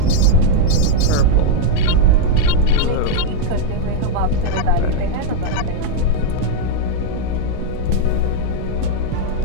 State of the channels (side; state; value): both; different; correlation -0.01